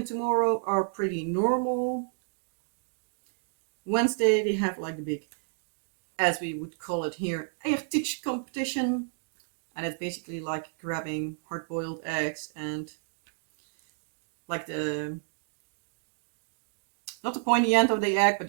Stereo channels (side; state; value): left; silent; digital silence